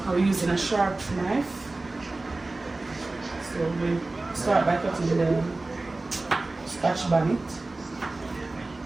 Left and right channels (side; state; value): left; quieter; 3.1 dB